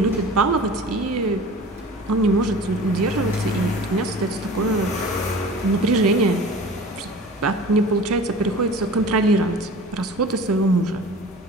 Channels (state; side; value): normal; both; correlation 0.40